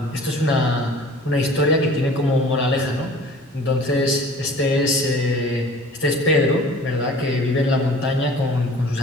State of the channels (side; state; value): both; normal; correlation 0.46